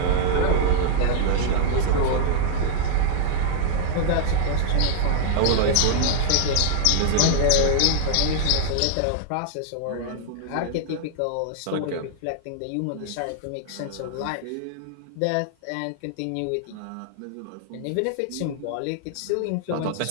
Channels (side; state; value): both; different; correlation -0.01